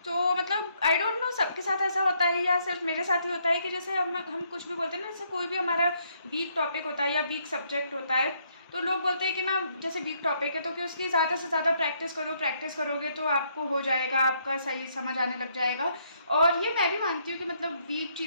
तो मतलब आई डोंट नो सबके साथ ऐसा होता है या सिर्फ मेरे साथ ही होता है कि जैसे हम कुछ भी बोलते हैं ना, जैसे कोई भी हमारा वीक टॉपिक होता है या वीक सब्जेक्ट होता है, तो लोग बोलते हैं कि ना जैसे वीक टॉपिक है तो कि उसकी ज़्यादा से ज़्यादा प्रैक्टिस करो, प्रैक्टिस करोगे तो आपको हो जाएगा, आपका सही समझ आने लग जाएगा। और ये मैं भी मानती हूँ कि मतलब वीक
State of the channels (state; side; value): inverted; both; correlation -0.72